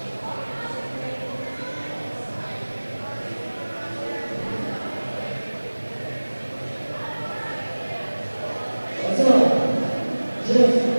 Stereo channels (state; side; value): inverted; both; correlation -1.00